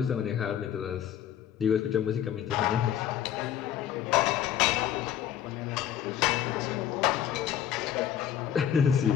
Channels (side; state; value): right; quieter; 10.1 dB